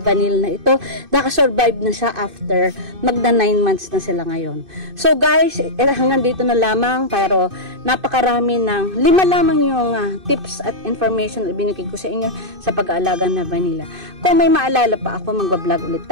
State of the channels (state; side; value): late; left; 2.5 ms